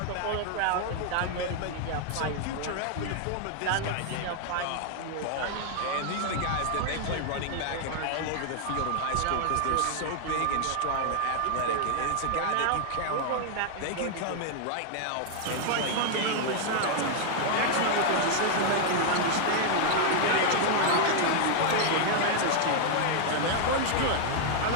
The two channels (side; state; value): both; different; correlation 0.00